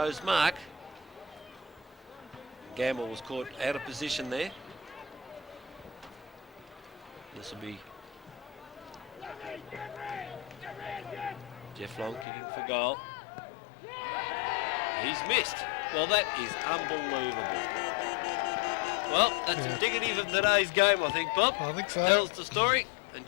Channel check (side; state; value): right; drops out; at 12.2 s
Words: mark. Gamble was caught out of position there. This will be Jeff Long kicking for goal. He's missed. Well, that is unbelievable. Well, that's indicative of today's game, I think, Bob. I think so. Tells the story. And